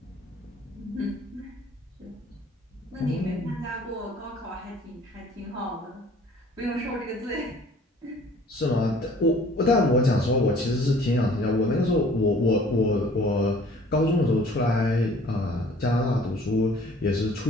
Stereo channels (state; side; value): normal; both; correlation 0.53